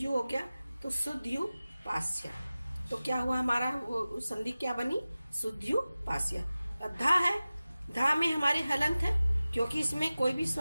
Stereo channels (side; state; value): both; inverted; correlation -0.97